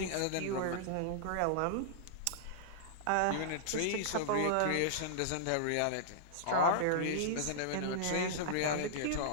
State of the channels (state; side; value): different; both; correlation -0.02